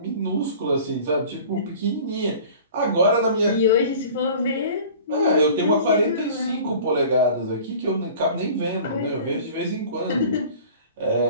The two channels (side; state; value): both; inverted; correlation -0.44